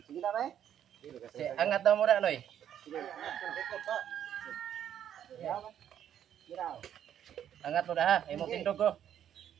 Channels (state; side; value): quieter; left; 10.0 dB